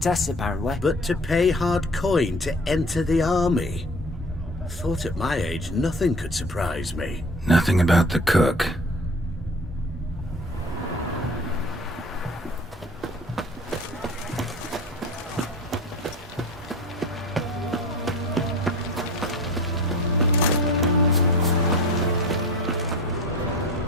apparently. But to pay hard coin to enter the army? Thought at my age nothing could surprise me. Nothing about the cook.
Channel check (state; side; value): normal; both; correlation 0.40